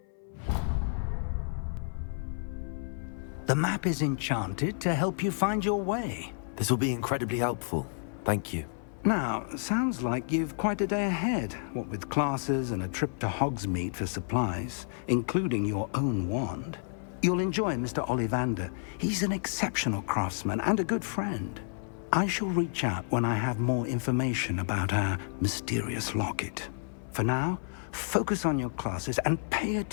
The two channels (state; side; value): silent; right; 57 dB below the other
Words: The map is enchanted to help you find your way. This will be incredibly helpful. Thank you. Now, sounds like you've quite a day ahead, what with classes and a trip to Hogsmeade for supplies, including your own wand. You'll enjoy Mr. Ollivander. He's an exceptional craftsman and a good friend. I shall reach out when I have more information about our mysterious locket. For now, focus on your classes and pay